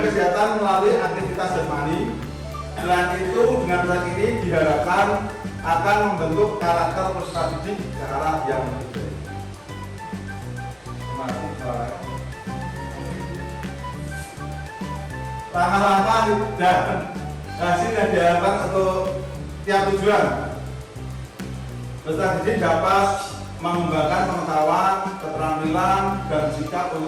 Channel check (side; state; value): both; identical; correlation 1.00